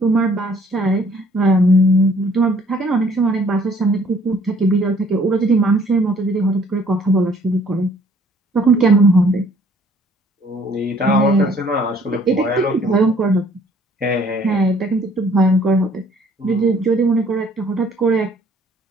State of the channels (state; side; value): normal; both; correlation 0.59